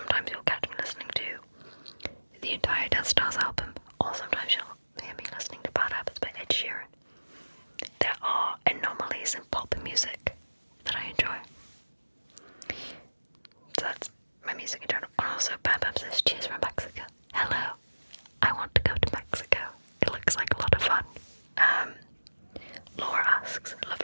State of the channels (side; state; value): both; inverted; correlation -1.00